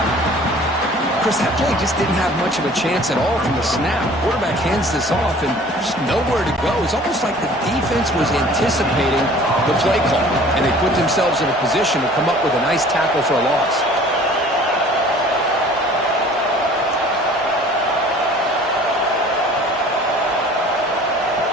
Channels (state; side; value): normal; both; correlation 0.49